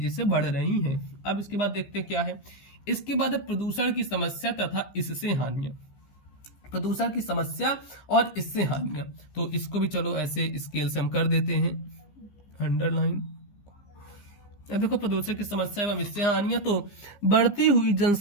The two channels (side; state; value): right; late; 15 ms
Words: से बढ़ रही हैं। अब इसके बाद देखते हैं क्या है। इसके बाद है प्रदूषण की समस्या तथा इससे हानियां। प्रदूषण की समस्या और इससे हानियां, तो इसको भी चलो ऐसे स्केल से हम कर देते हैं अंडरलाइन। देखो प्रदूषण की समस्या एवं इससे हानियां, तो बढ़ती हुई